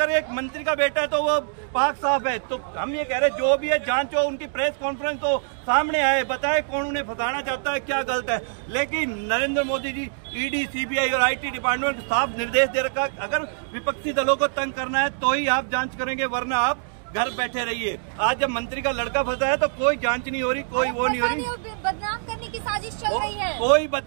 एक मंत्री का बेटा है तो वो पाक साफ है। तो हम ये कह रहे हैं जो भी है जांच हो, उनकी प्रेस कॉन्फ्रेंस हो, सामने आए, बताए कौन उन्हें फंसाना चाहता है, क्या गलत है। लेकिन नरेंद्र मोदी जी ईडी, सीबीआई और आईटी डिपार्टमेंट को साफ निर्देश दे रखा, अगर विपक्षी दलों को तंग करना है तो ही आप जांच करेंगे, वरना आप घर बैठे रहिए। आज जब मंत्री का लड़का फंसा है तो कोई जांच नहीं हो रही, कोई वो नहीं हो रही। बदनाम करने की साजिश चल रही है। कोई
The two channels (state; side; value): silent; left; digital silence